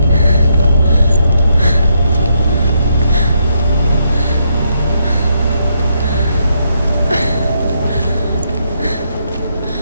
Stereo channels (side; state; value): both; inverted; correlation -0.77